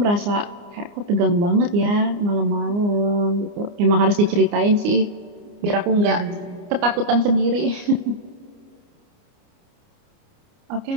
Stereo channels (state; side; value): late; left; 29 ms